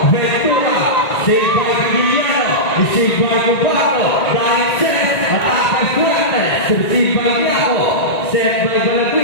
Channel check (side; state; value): right; late; 1.9 ms